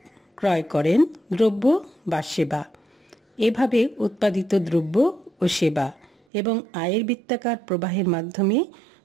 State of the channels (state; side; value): drops out; left; at 6.1 s